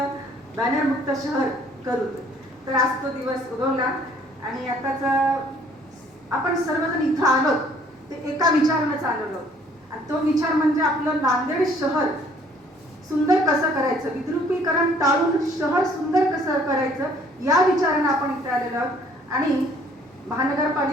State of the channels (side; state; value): both; normal; correlation 0.59